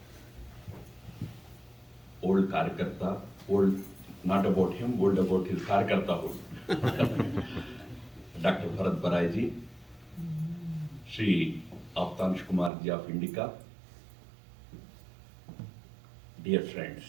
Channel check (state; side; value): drops out; left; at 12.7 s